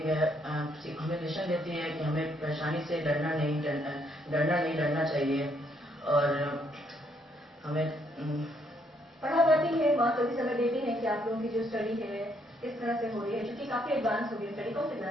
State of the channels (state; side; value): normal; both; correlation 0.72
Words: है, हमें लेसन देती है कि हमें परेशानी से डरना नहीं डरना चाहिए। और हमें पढ़ा पाती है माँ, कभी समय देती है कि आप लोगों की जो स्टडी है किस तरह से हो रही है, क्योंकि काफी एडवांस हो गई स्टडी। कौन से